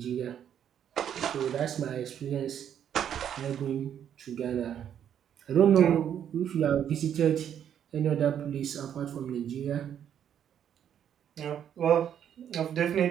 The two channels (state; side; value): quieter; left; 9.4 dB